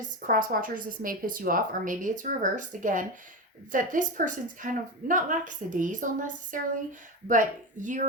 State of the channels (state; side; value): normal; both; correlation 0.19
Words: cross watchers, this may piss you off, or maybe it's reversed again, that this person's kind of not lackadaisical necessarily, but